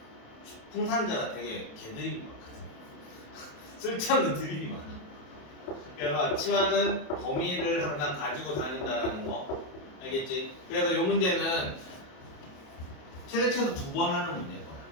풍산자가 되게 개드립이 많거든. 쓸데없는 드립이 많아. 그래서 치환은 범위를 항상 가지고 다닌다라는 거 알겠지? 그래서 이 문제는 최소 2번 하는 문제인 거야.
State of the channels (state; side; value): late; right; 27 ms